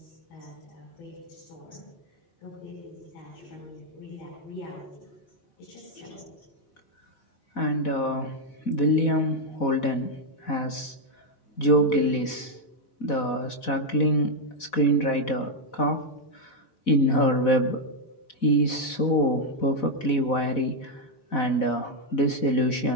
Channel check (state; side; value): late; right; 4.1 ms